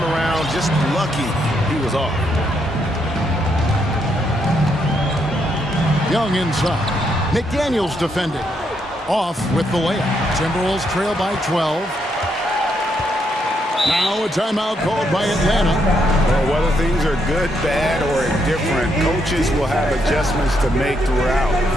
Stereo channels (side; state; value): both; normal; correlation 0.77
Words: around, just lucky he was off. Young inside. McDaniels defending. Off with the layup. Timberwolves trail by 12. Now a timeout called by Atlanta. Well, whether things are good, bad, or indifferent, coaches will have adjustments to make throughout